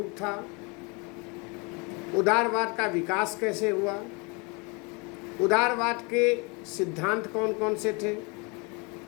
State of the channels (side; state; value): right; quieter; 30.2 dB